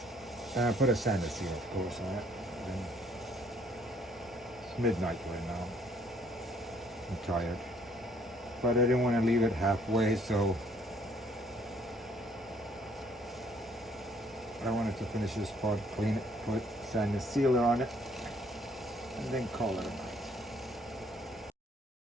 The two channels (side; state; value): both; normal; correlation 0.63